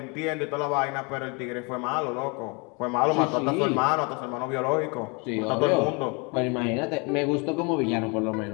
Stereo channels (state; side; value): quieter; right; 30.8 dB